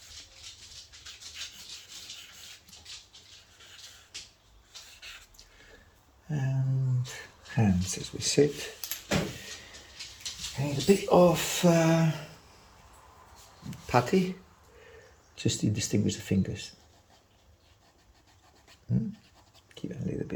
And hands as we sit. And a bit of putty, just to distinguish the fingers. Give it a little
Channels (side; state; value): both; identical; correlation 1.00